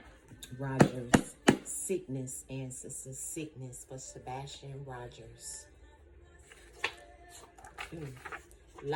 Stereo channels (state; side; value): identical; both; correlation 1.00